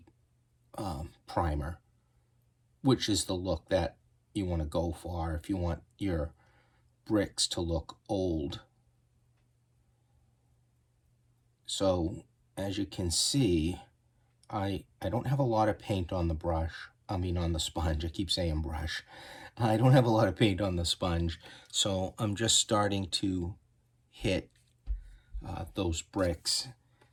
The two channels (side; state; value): both; identical; correlation 1.00